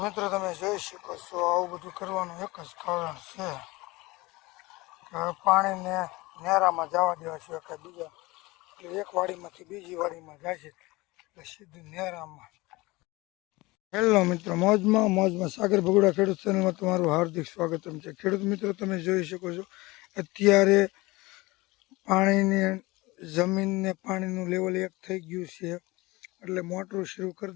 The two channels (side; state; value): right; quieter; 21.9 dB